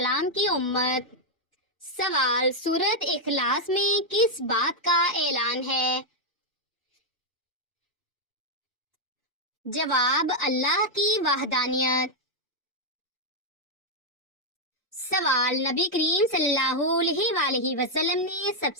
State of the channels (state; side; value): normal; both; correlation -0.01